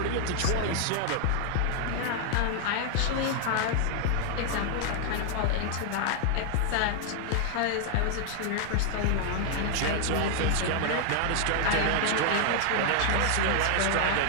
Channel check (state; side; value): different; both; correlation 0.00